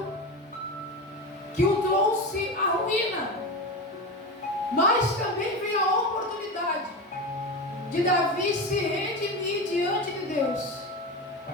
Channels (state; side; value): normal; both; correlation 0.22